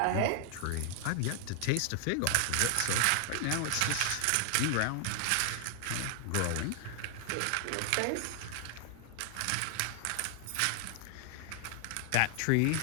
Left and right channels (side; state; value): both; different; correlation 0.00